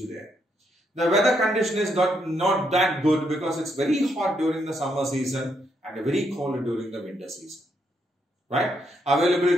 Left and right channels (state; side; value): normal; both; correlation 0.77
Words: there. The weather condition is not that good because it's very hot during the summer season and very cold during the winter season. Right?